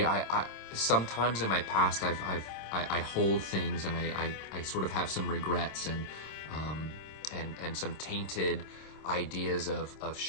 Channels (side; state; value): right; late; 26 ms